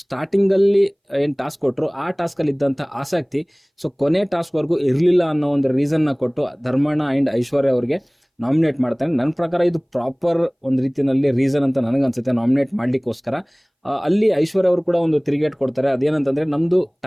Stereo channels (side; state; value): both; identical; correlation 1.00